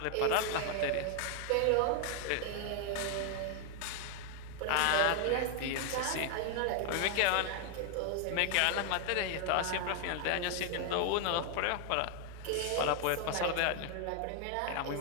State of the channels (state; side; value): different; both; correlation 0.00